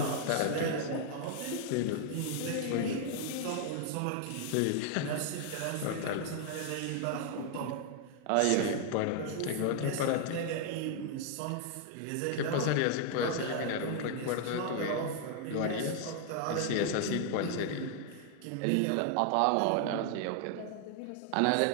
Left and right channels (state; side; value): different; both; correlation 0.00